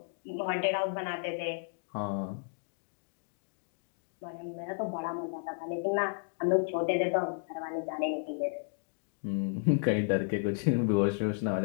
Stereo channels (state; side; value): silent; right; digital silence